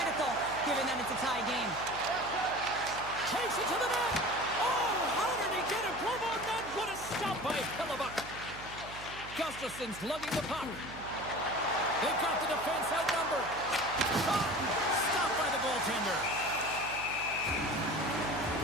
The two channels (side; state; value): right; noise; hum, 15 dB below the sound